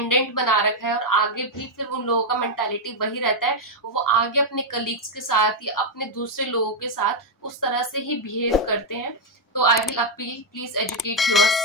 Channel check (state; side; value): normal; both; correlation 0.00